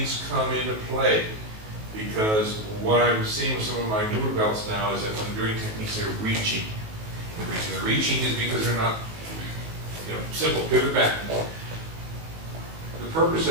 come into play. Because what I'm seeing with some of my newer belts now is that when they're doing techniques, they're reaching. The reaching is because they're not, you know, simple, pivot back. The purpose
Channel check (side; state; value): left; late; 19 ms